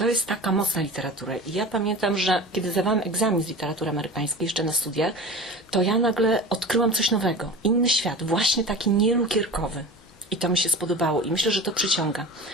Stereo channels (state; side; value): normal; both; correlation 0.34